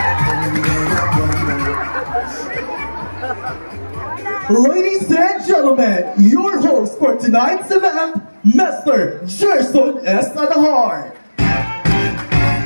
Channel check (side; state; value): both; inverted; correlation -1.00